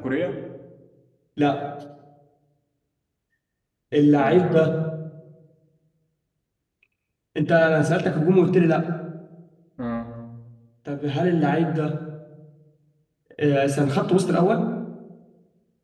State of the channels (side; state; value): both; identical; correlation 1.00